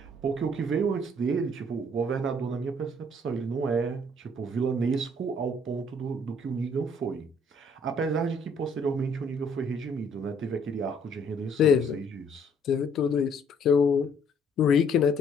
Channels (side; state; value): both; normal; correlation 0.62